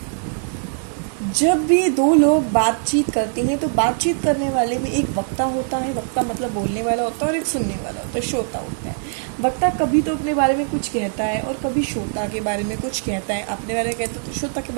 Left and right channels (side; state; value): left; silent; digital silence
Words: जब भी दो लोग बातचीत करते हैं तो बातचीत करने वाले में एक वक्ता होता है, वक्ता मतलब बोलने वाला होता है, और एक सुनने वाला होता है, श्रोता होता है। वक्ता कभी तो अपने बारे में कुछ कहता है और कभी श्रोता के बारे में कुछ कहता है। अपने बारे में कहता है तो श्रोता के